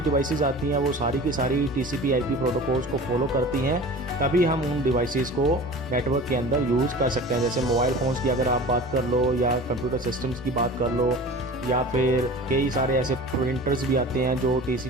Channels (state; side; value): normal; both; correlation 0.38